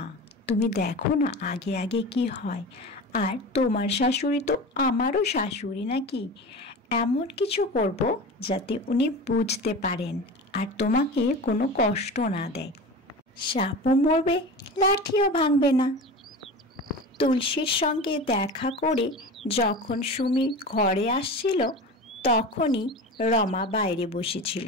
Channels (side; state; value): both; normal; correlation 0.31